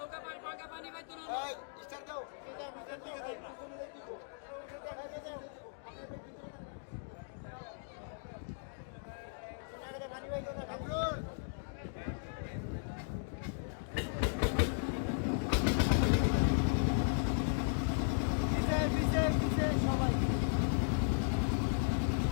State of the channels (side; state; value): right; silent; digital silence